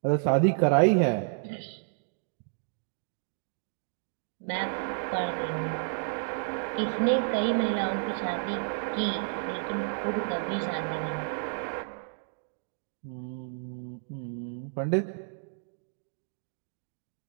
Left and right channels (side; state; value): left; silent; digital silence